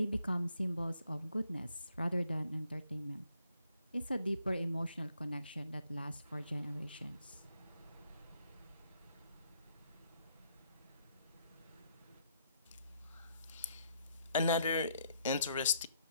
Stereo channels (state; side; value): inverted; both; correlation -0.71